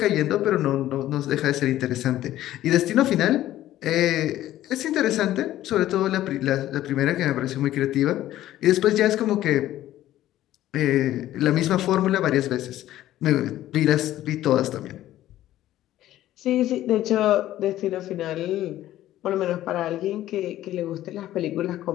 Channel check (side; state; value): right; quieter; 13.8 dB